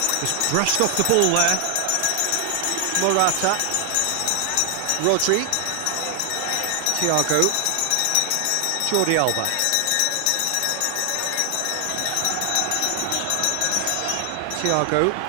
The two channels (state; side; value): different; both; correlation 0.00